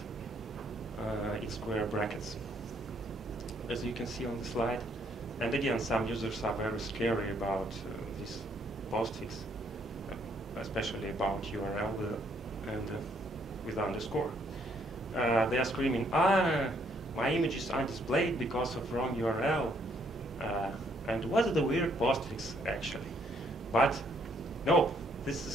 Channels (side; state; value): both; normal; correlation 0.68